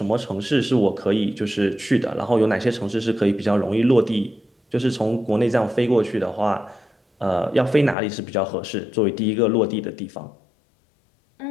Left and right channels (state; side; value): drops out; right; at 8.0 s